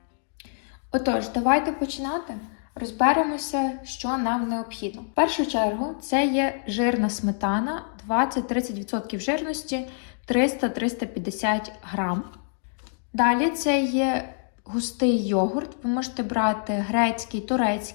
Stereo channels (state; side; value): silent; right; digital silence